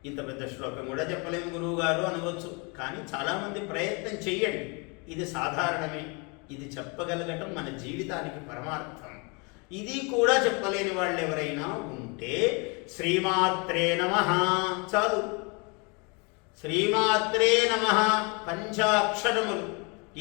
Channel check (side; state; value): right; quieter; 31.4 dB